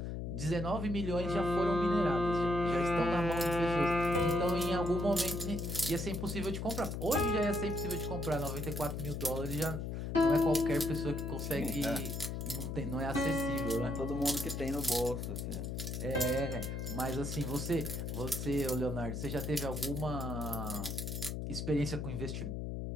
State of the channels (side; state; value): left; noise; hum, 4 dB below the sound